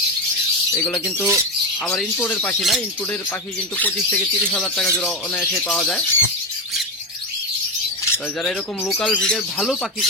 এগুলো কিন্তু আবার ইনপোর্টের পাখি না, ইনপোর্টের পাখি কিন্তু 25 থেকে 30,000 টাকা জোড়া অনায়াসে পাওয়া যায়। যারা এরকম লোকাল ব্রিডের ভালো পাখি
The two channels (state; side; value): normal; both; correlation 0.14